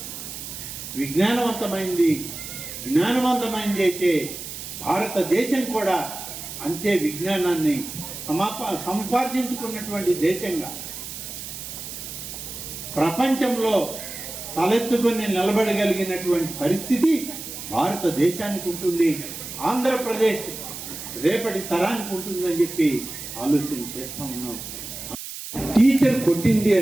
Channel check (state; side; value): noise; right; hiss, 9 dB below the sound